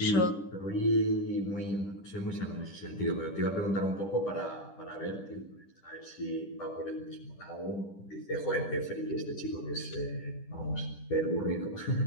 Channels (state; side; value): late; right; 10 ms